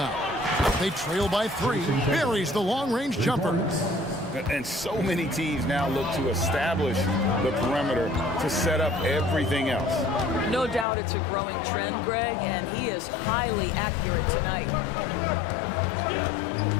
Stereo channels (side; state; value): right; drops out; at 10.9 s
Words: They trail by 3. Buries the long-range jumper. And so many teams now look to establish the perimeter to set up everything else. No doubt it's a growing trend, Greg, and he is highly accurate tonight.